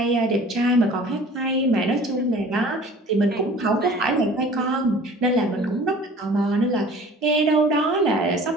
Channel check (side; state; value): both; normal; correlation 0.47